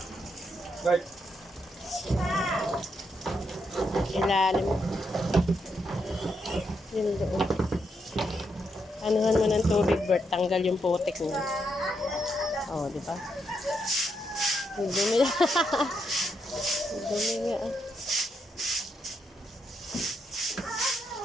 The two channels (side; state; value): both; normal; correlation 0.80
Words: Bert. Ilalim. Yun doon. Anuhan mo ng tubig, Bert. Tanggal yung putik niya. Oo, di ba? Ang dumi na. Ang dumi nga.